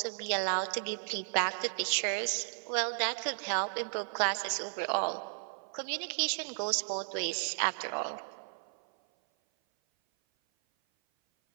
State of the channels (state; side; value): silent; left; 55 dB below the other